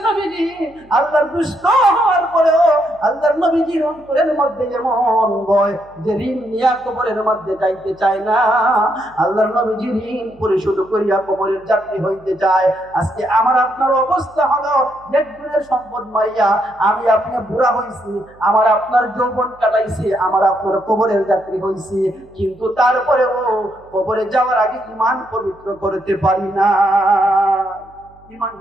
নবীজি আল্লাহর দুষ্ট হওয়ার পরেও আল্লাহর নবীজির অন্তরের মধ্যে যেমন ভয়, যে ঋণ নিয়ে কবরের মধ্যে যাইতে চায় না, আল্লাহর নবীজি ঋণ পরিশোধ করিয়া কবরের যাত্রী হইতে চায়। আজকে আমার আপনার অবস্থা হলো, নেটগুলোর সম্পদ মাইয়া আমি আপনি বুড়া হইছি, আমার আপনার যৌবন কাটাইছি, আমার আপনার কবরের যাত্রী হইছি, কিন্তু তারপরেও কবরে যাওয়ার আগে ঈমান পবিত্র করতে পারি না।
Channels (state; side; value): noise; right; hum, 28 dB below the sound